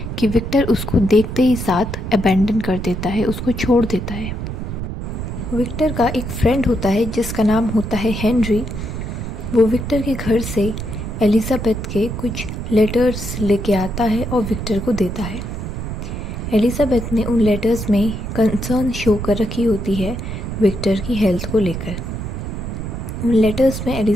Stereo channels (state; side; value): noise; right; rumble, 5 dB below the sound